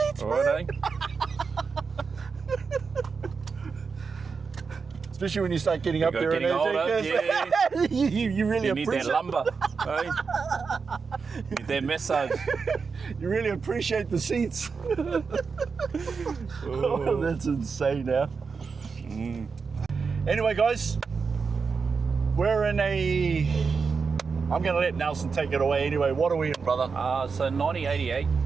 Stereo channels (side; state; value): left; quieter; 5.2 dB